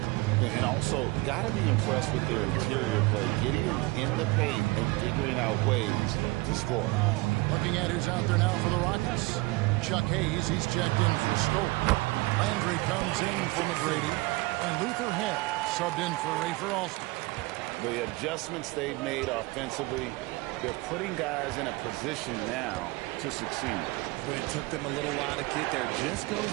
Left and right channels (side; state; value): left; quieter; 22.8 dB